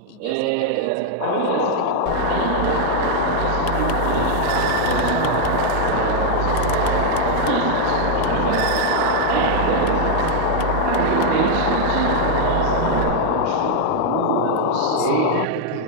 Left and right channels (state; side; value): different; both; correlation 0.00